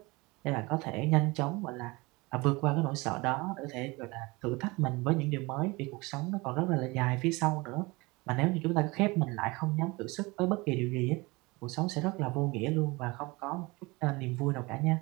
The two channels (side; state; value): left; quieter; 24.2 dB